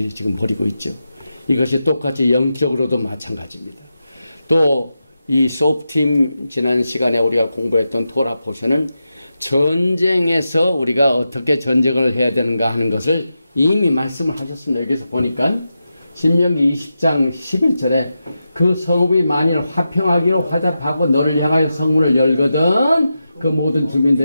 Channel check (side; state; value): both; inverted; correlation -0.90